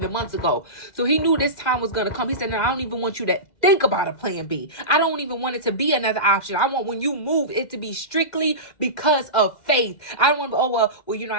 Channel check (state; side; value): late; right; 2.0 ms